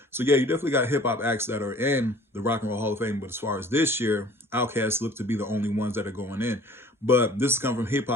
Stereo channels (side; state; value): both; normal; correlation 0.50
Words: So yeah, you definitely got hip hop acts that are in the Rock and Roll Hall of Fame. But as far as this year, OutKast look to be the only ones that are going in. But this is coming from